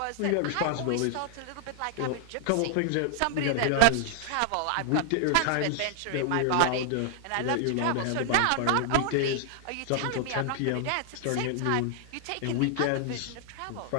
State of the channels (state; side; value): different; both; correlation 0.00